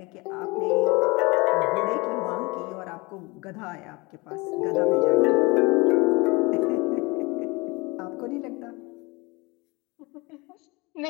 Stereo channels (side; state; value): right; quieter; 25.4 dB